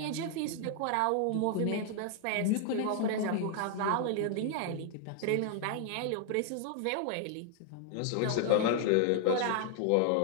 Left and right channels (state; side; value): different; both; correlation 0.00